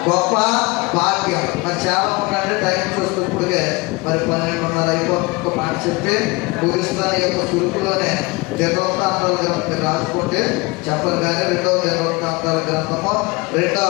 గొప్ప భాగ్యం. మరి చాలా ఉందంటే టైం చూస్తూ ఇప్పుడుగే మరి 12:30 అయిపోతుంది. మాట చెప్పి ముగిస్తాను. ఈ యొక్క సురుకులోనే దినవృత్తాంతాల గ్రంథం రాసుకుంటే చెప్పను కానీ 2వ దినవృత్తాంతాల గ్రంథము 2వ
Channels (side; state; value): right; quieter; 25.0 dB